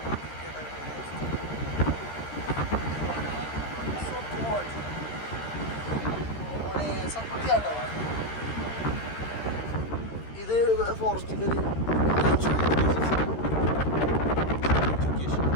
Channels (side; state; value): right; late; 13 ms